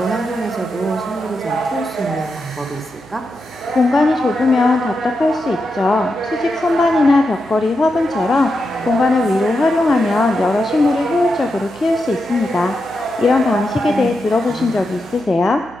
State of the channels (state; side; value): noise; right; hum, 23 dB below the sound